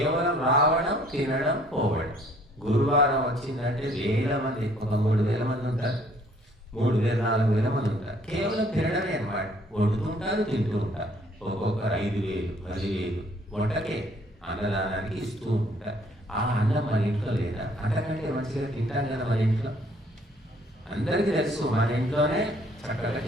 రావడం, తినడం, పోవడం. గురువారం వచ్చిందంటే వేల మంది, ఒక 3,000 మంది ఉంటారు, 3,000 4,000 మంది ఉంటారు. కేవలం తినడమే అన్నమాట. వండుతుంటారు, తింటూ ఉంటారు. ఒక్కొక్కరు 5,000 10,000 వంటకే, అన్నదానానికి ఇస్తూ ఉంటారు. ఆ అన్నం మన ఇంట్లో లేదా? అంతకంటే మంచిగా తింటాం కదా మన ఇంట్లో. అందరికీ తెలుసు, మన ఇంట్లోనే చక్కగా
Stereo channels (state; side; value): normal; both; correlation 0.60